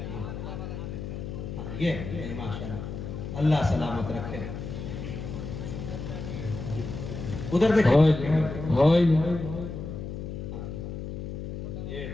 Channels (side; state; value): left; noise; hum, 7 dB below the sound